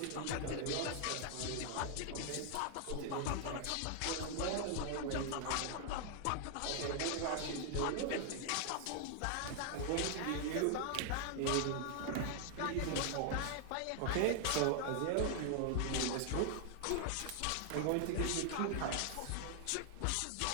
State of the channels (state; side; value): different; both; correlation 0.00